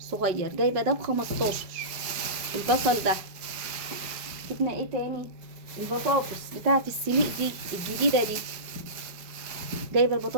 جايبه ده ب15 البصل ده. جبنا ايه تاني؟ البطاطس بتاعت السليق دي الجديده دي، جايبه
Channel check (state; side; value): late; left; 5.4 ms